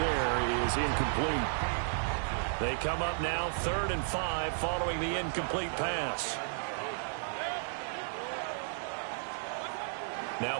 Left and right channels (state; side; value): silent; left; digital silence